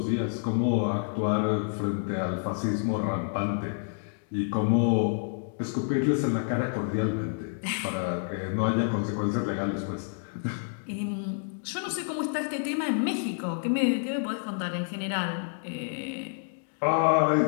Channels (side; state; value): right; silent; digital silence